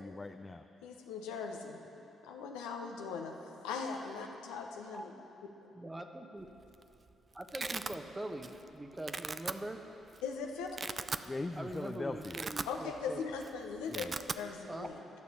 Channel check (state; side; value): normal; both; correlation 0.74